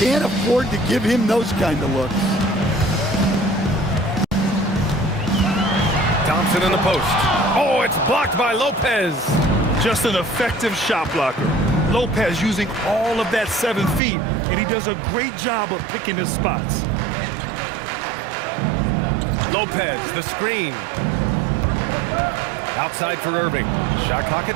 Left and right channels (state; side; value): drops out; left; at 14.0 s